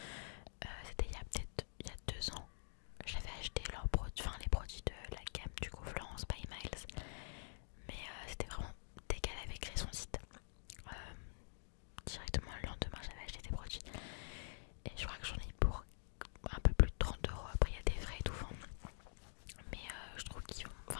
C'était il y a peut-être 2 ans. J'avais acheté leurs produits, enfin les produits de la gamme du coup Florence by Miles. Mais c'était vraiment dès qu'elle avait créé son site. Directement le lendemain j'avais acheté des produits. Et je crois que j'en ai pour un peu plus de 30 €. Après il y a des frais et tout. Mais je trouve qu'ils vont,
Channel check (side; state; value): right; silent; digital silence